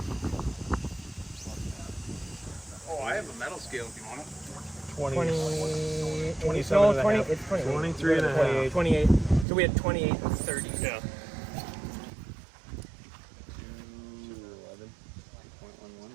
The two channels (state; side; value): drops out; left; at 9.5 s